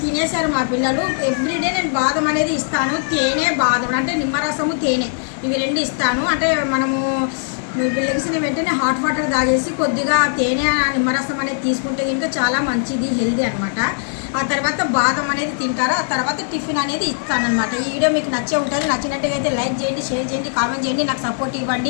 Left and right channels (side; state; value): right; silent; digital silence